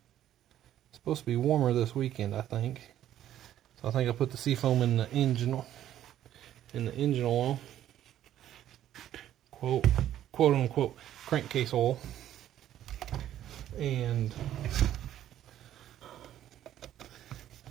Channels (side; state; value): left; quieter; 11.8 dB